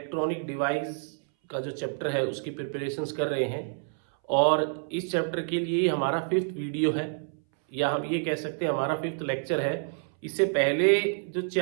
डिवाइस का जो चैप्टर है उसकी प्रिपरेशंस कर रहे हैं। और इस चैप्टर के लिए हमारा 5th वीडियो है, या हम ये कह सकते हैं हमारा 5th लेक्चर है। इससे पहले जो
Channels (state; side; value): silent; left; 59 dB below the other